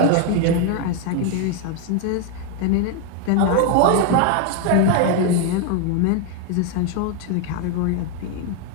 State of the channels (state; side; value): different; both; correlation 0.01